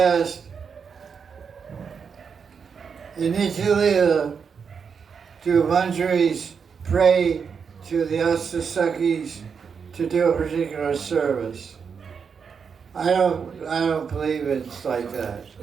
in Nitya do Manjaris pray to the Astasakis to do a particular service? I don't believe it's like that.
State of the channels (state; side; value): quieter; left; 6.3 dB